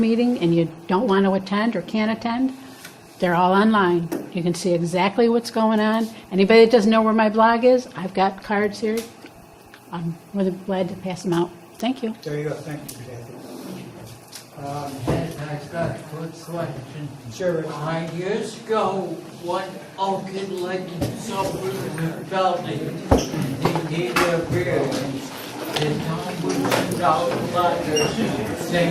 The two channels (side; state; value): both; identical; correlation 1.00